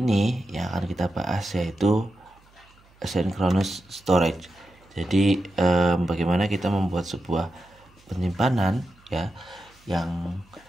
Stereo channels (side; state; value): right; noise; hum, 30 dB below the sound